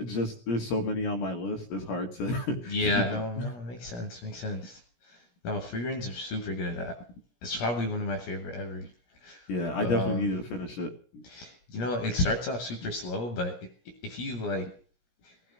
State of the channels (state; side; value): late; right; 17 ms